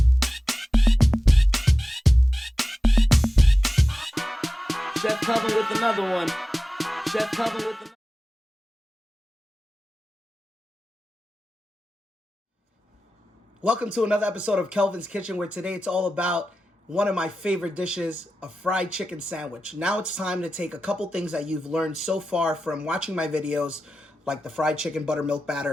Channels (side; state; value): both; normal; correlation 0.94